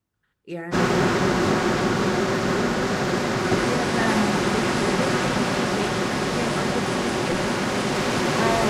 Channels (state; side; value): identical; both; correlation 1.00